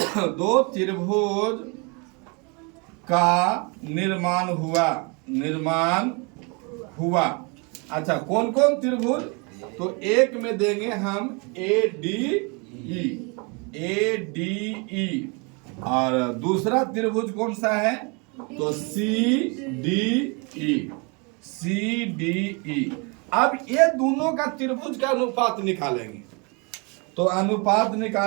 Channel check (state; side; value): quieter; left; 31.8 dB